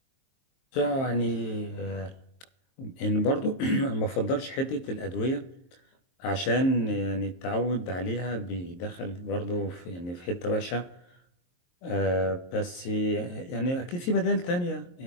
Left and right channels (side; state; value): right; late; 23 ms